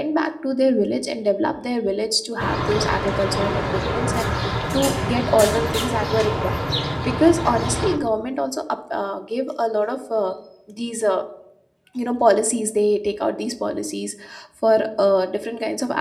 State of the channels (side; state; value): both; identical; correlation 1.00